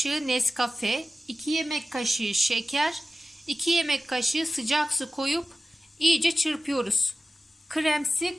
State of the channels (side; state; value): both; normal; correlation 0.95